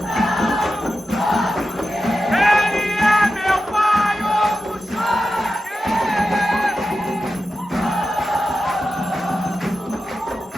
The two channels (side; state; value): both; normal; correlation 0.91